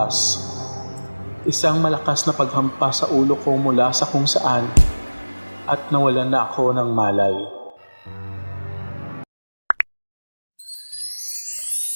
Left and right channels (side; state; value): both; inverted; correlation -1.00